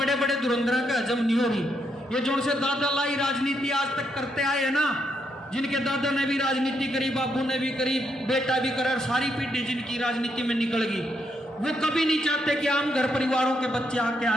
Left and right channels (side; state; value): both; normal; correlation 0.78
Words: बड़े धुरंधरों का हजम नहीं हो रही। ये जो उनसे दादा लाई राजनीति आज तक करते आए हैं ना, जिनके दादा ने भी राजनीति करी, बाबू ने भी करी, बेटा भी करा, सारी पीढ़ी जिनकी राजनीति में निकल गई, वो कभी नहीं चाहते कि आम घर परिवारों के बच्चे आगे